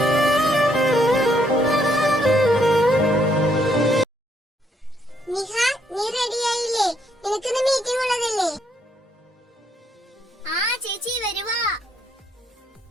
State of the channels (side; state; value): both; normal; correlation 0.72